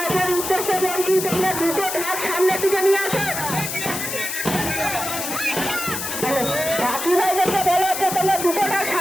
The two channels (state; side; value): noise; left; hiss, 4 dB below the sound